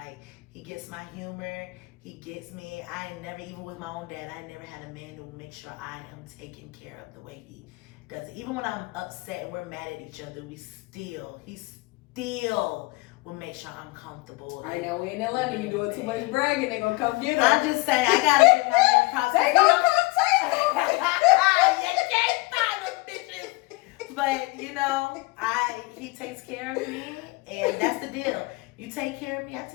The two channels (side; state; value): right; quieter; 23.6 dB